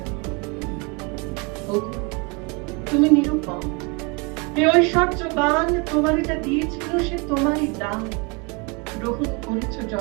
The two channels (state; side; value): quieter; left; 30.7 dB